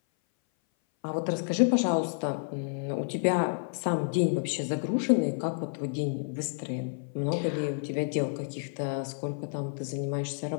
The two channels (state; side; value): silent; right; 57 dB below the other